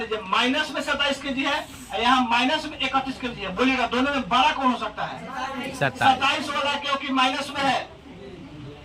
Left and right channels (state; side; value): identical; both; correlation 1.00